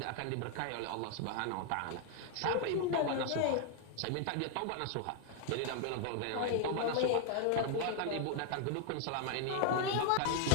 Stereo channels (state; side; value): different; both; correlation 0.00